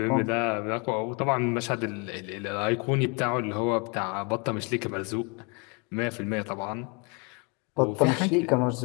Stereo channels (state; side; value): quieter; right; 31.9 dB